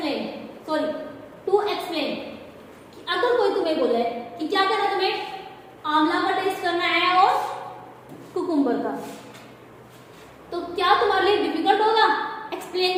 to explain. अगर कोई तुम्हें बोले कि क्या करना है, तुम्हें आंवला का टेस्ट करना है और कुकुम्बर कुकुम्बर का। तो क्या तुम्हारे लिए डिफिकल्ट होगा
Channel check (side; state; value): both; identical; correlation 1.00